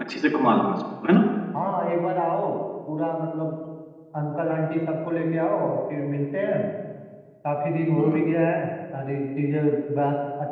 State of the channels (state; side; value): identical; both; correlation 1.00